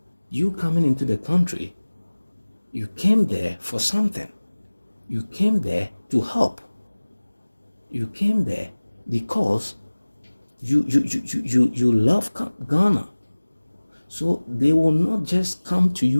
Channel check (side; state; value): both; inverted; correlation -1.00